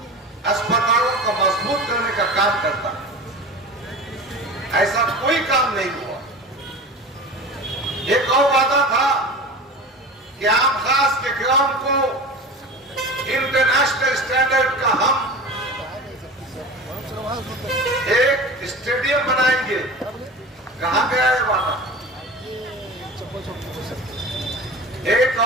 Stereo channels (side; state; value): both; normal; correlation 0.33